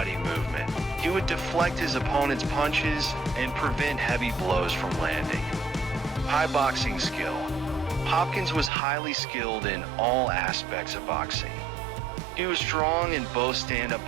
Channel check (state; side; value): drops out; left; at 8.7 s